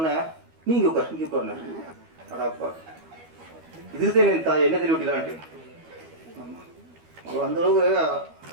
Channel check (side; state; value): left; late; 12 ms